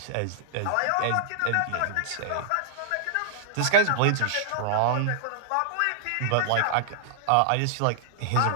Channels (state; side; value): different; both; correlation -0.01